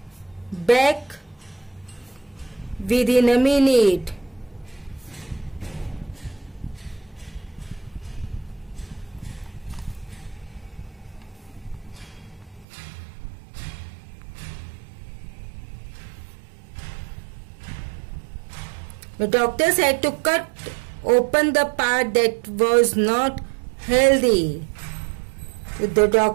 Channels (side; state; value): left; drops out; at 12.7 s